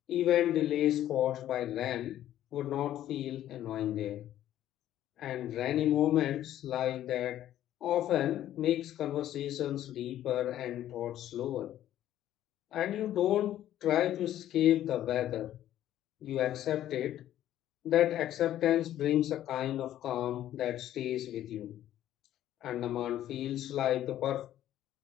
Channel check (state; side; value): quieter; right; 12.3 dB